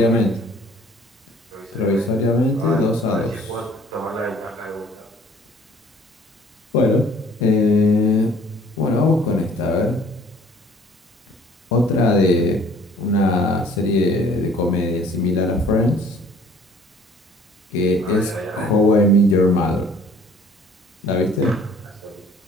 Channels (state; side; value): normal; both; correlation 0.55